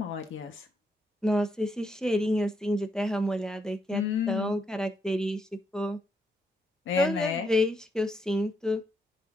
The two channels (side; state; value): both; normal; correlation 0.78